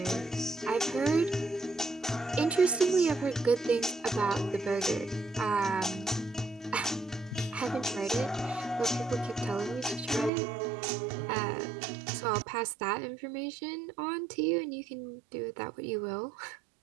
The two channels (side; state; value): left; drops out; at 10.3 s